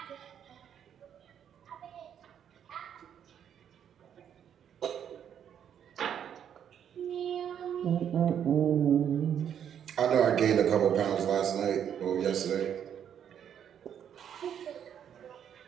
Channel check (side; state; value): left; quieter; 9.0 dB